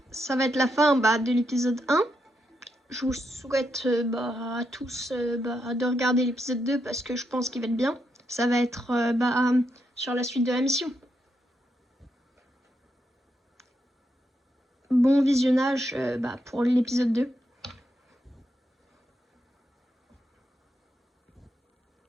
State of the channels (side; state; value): both; normal; correlation 0.82